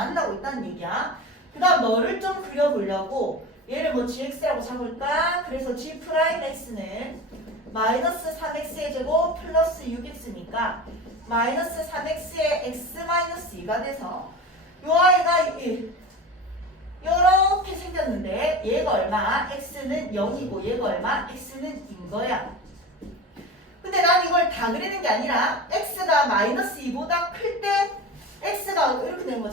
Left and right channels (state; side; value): normal; both; correlation 0.31